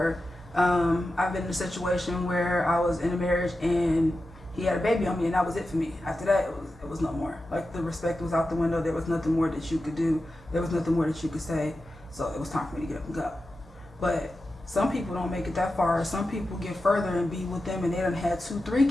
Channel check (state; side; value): normal; both; correlation 0.91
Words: I've been in a situation where I was in a marriage and he had a baby on me, and that was it for me. After that, it was no more. Like, the respect was out the window. There was nothing more that you could do. There was nothing more that you could say. So it was time for me to get up and go. But some people don't make it that far. Some people get further and be with them, and they done had 2-3